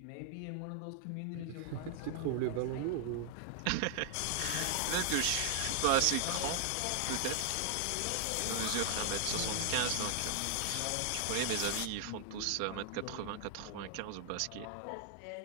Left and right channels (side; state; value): both; different; correlation 0.00